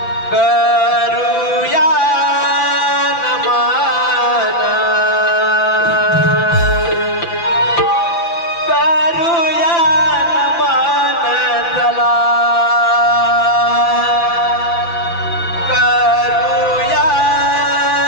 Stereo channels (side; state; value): right; late; 5.9 ms